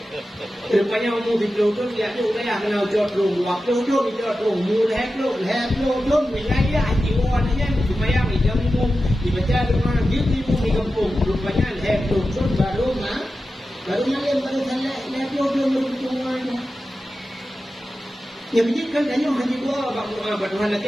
rupanya umum di pelutun dia tu dah kenal jod rum, waktu jod di jod rum, mula pelutun wilayah jiwa ni supaya macam umum dibaca dengan gitu di kampung, rupanya pelutun baru yang baru sana pelutun beruntungan. Yang menjadikan tanya haji gua Tuhan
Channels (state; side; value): normal; both; correlation 0.93